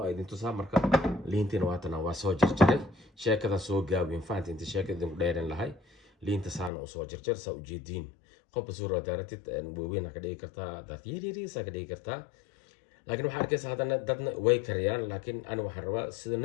idin tusaa marka liinteena waatana waa soo jarjaray sheekada soo gaabin faanti inta sheekada ku dheeran lahay liinta saana soo jarjar sa u jeedin qof suura daaratid weeyna ka dhigi kartaa dad yiri sa ka dhigi kartaa laakiin waxa arkaysa hadana dadna way kariyaan laakiin ana waxaan rabaa sida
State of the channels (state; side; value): drops out; right; at 6.7 s